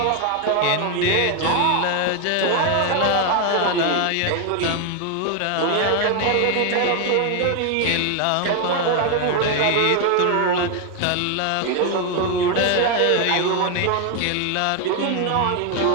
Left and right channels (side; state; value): both; different; correlation 0.01